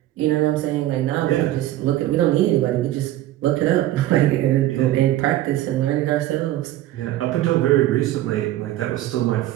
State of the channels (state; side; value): quieter; left; 14.4 dB